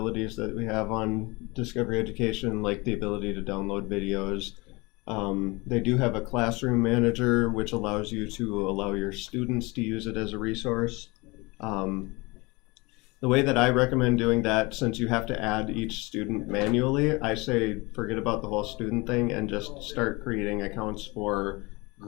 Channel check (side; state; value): right; quieter; 25.1 dB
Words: that we have on Discovery Education, like the ability to download videos. They do have a classroom manager, which allows you to allow your students to use it as a resource. The The way that I recommend doing that, since you have to add each student manually, I say forget about the whole student thing and just start creating accounts for